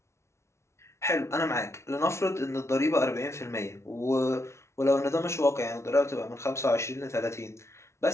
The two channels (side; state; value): right; late; 0.13 ms